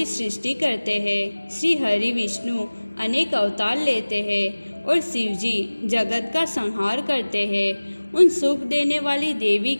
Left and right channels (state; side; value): inverted; both; correlation -1.00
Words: सृष्टि करते हैं, श्री हरि विष्णु अनेक अवतार लेते हैं और शिव जी जगत का संहार करते हैं। उन सुख देने वाली देवी